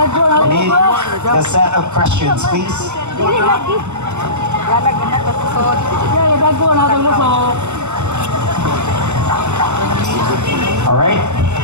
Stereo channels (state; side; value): late; left; 0.83 ms